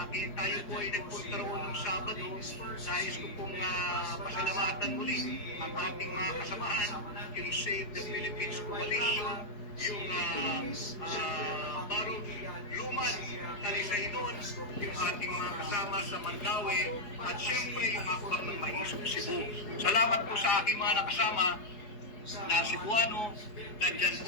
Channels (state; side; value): late; right; 4.8 ms